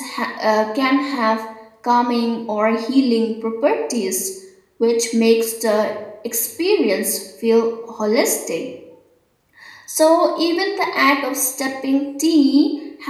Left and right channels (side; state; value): both; identical; correlation 1.00